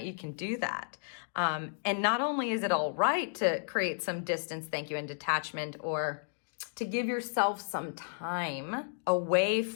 you can do that. And not only is it all right to create some distance, thank you, and detachment, or to give yourself some time away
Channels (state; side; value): silent; right; digital silence